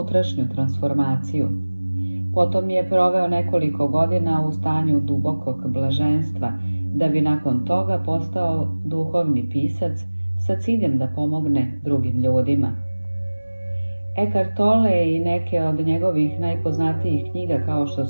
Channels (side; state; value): both; inverted; correlation -1.00